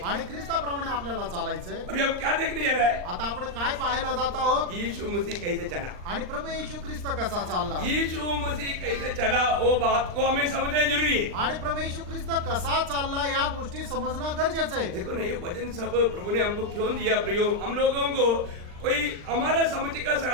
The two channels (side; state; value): left; late; 39 ms